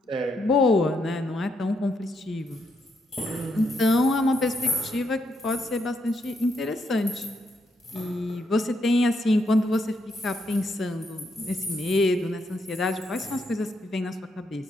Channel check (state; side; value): normal; both; correlation 0.78